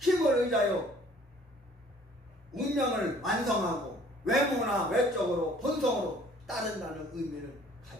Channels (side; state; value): both; normal; correlation 0.56